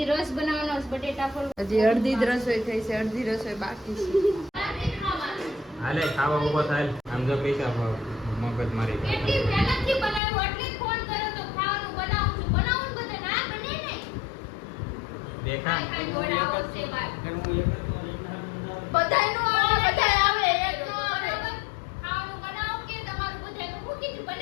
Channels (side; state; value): right; drops out; at 10.2 s